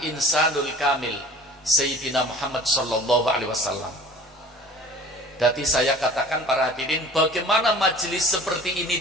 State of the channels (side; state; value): both; normal; correlation 0.45